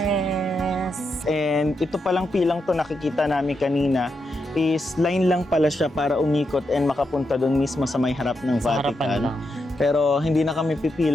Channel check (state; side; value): normal; both; correlation 0.84